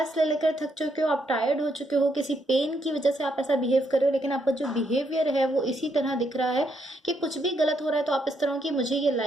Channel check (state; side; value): normal; both; correlation 0.76